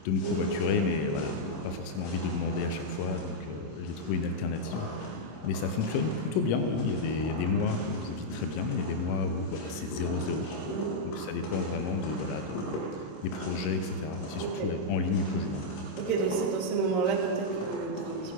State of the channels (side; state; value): right; late; 26 ms